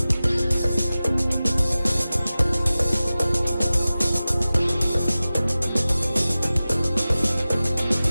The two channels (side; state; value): both; inverted; correlation -0.96